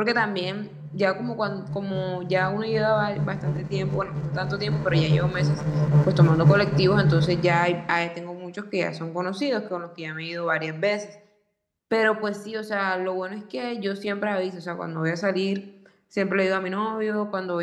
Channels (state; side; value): identical; both; correlation 1.00